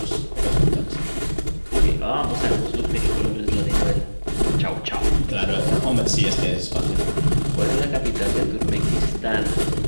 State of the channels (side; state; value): both; inverted; correlation -1.00